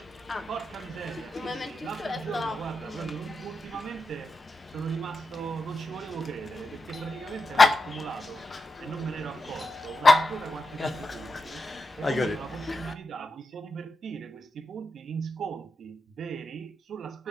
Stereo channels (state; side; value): normal; both; correlation 0.87